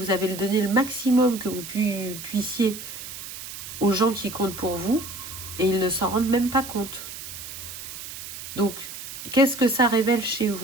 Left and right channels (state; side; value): noise; right; hiss, 10 dB below the sound